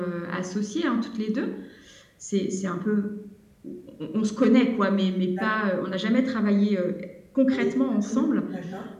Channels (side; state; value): both; identical; correlation 1.00